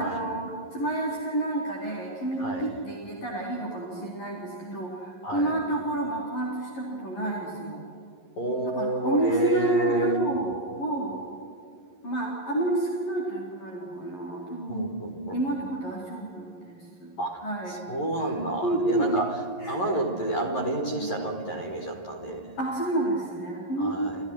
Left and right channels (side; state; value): right; late; 11 ms